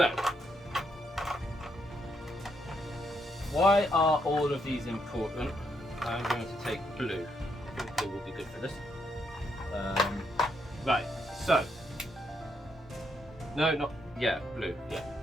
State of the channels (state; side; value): normal; both; correlation 0.77